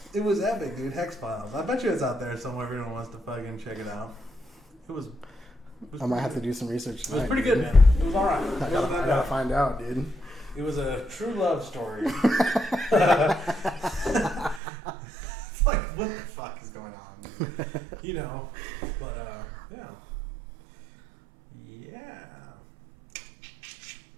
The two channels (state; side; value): drops out; left; at 14.6 s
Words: it was epic, dude. Hex Files. I bet you it's out there somewhere if anyone wants to fucking check it out. It was I might have to do some research tonight. It was pretty good, man. It was alright. I gotta find out, dude. It was a true love story. It's like, what the fuck is going on, dude? You know, but, yeah. Yeah.